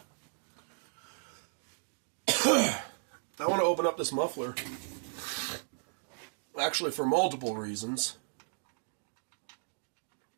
I want to open up this muffler. Actually, for multiple reasons.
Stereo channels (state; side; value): silent; left; digital silence